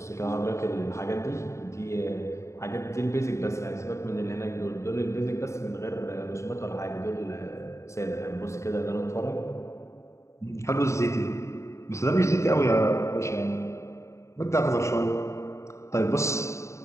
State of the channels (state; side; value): late; right; 0.14 ms